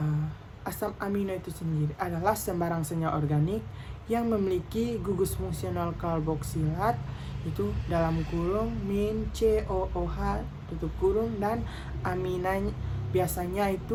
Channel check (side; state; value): both; identical; correlation 1.00